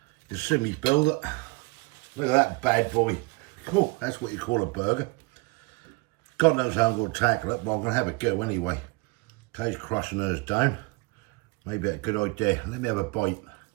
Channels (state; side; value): quieter; left; 26.3 dB